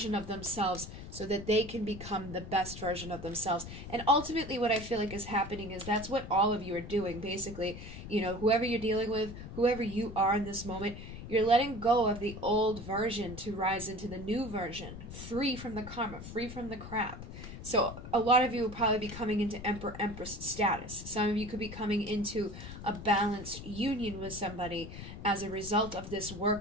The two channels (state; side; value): noise; left; rumble, 11 dB below the sound